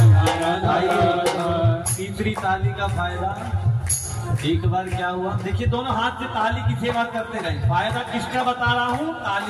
राधा राधा। तीसरी ताली का फायदा एक बार क्या हुआ, देखिए दोनों हाथ से ताली की सेवा करते रहे। फायदा किसका बता रहा हूँ?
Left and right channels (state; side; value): identical; both; correlation 1.00